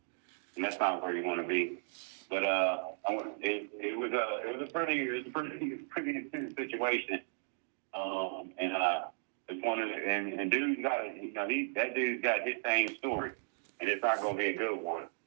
that's not where you want to be. But it was a pretty intense situation. It's one of the, and dude's got that dude's got his same story, and it's not going to be a good one.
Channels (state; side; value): silent; left; digital silence